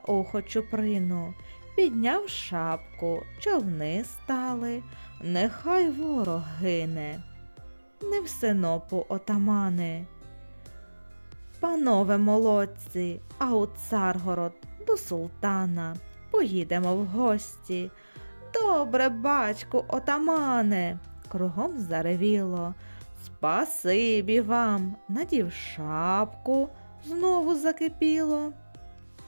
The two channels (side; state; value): both; inverted; correlation -1.00